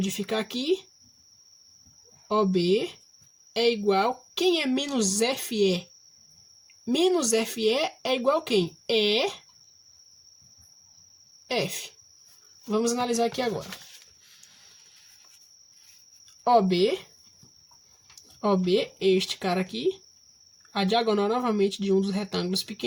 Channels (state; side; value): identical; both; correlation 1.00